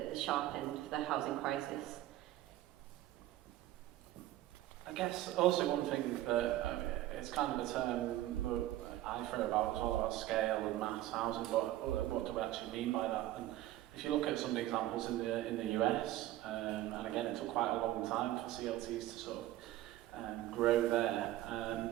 sharp end of the housing crisis. I guess also one thing that it's kind of a term that I throw about as well, about scale and mass housing, but what do we actually mean by that? And if you look at some of the examples in the US, and again it took quite a long time for CLTs to sort of grow there,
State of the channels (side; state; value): left; quieter; 14.7 dB